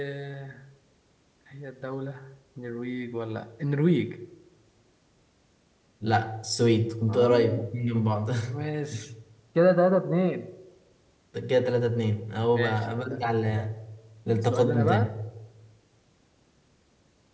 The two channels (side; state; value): both; identical; correlation 1.00